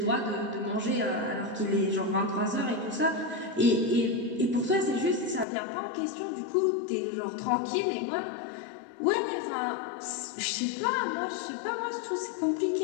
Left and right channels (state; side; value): drops out; right; at 5.5 s